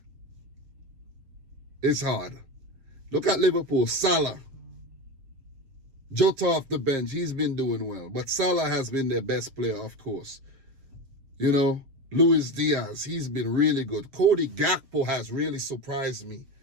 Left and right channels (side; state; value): left; late; 7.2 ms